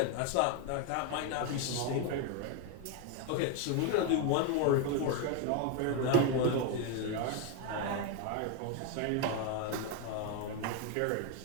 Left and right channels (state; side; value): different; both; correlation 0.01